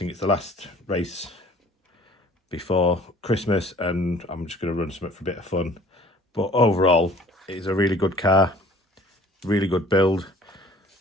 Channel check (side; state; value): both; normal; correlation 0.52